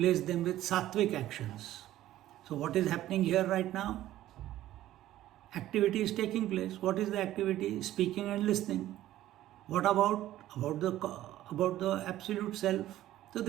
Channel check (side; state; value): left; quieter; 14.0 dB